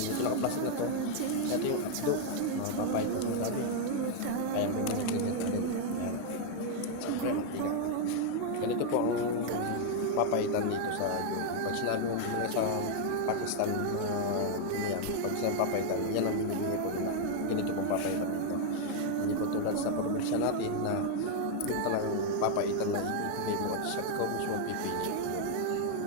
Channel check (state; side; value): different; both; correlation 0.00